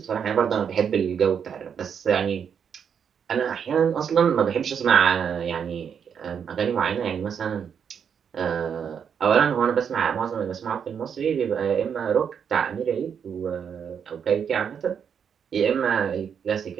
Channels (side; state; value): left; quieter; 7.4 dB